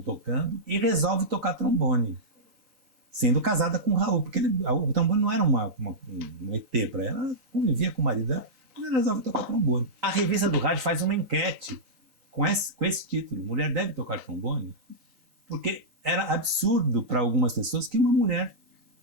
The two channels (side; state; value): left; late; 3.9 ms